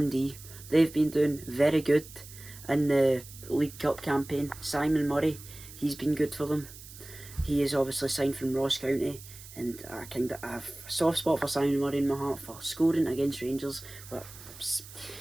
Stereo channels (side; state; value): right; noise; hiss, 17 dB below the sound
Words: They've been doing very good in the League Cup campaign. Simon Murray, he's been good for them. He is obviously signed from Ross County and I kind of have a soft spot for Simon Murray in my heart for scoring against Rangers, which